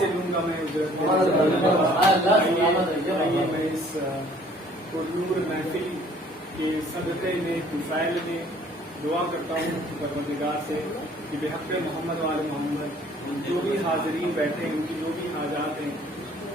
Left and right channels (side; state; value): both; normal; correlation 0.56